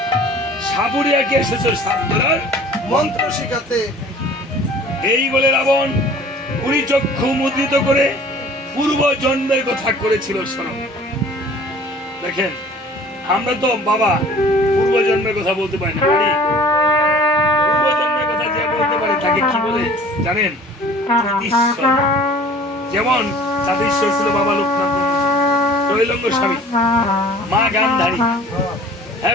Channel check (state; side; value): normal; both; correlation 0.48